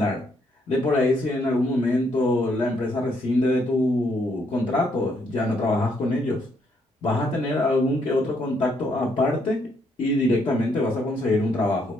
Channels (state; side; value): normal; both; correlation 0.73